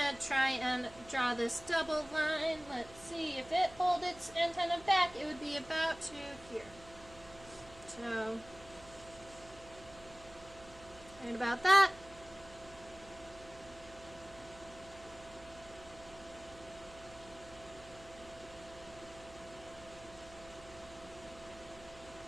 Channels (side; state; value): right; noise; hum, 20 dB below the sound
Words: try and draw this double line. Let's see if it holds its antenna back. It would be about to here. So, right about that.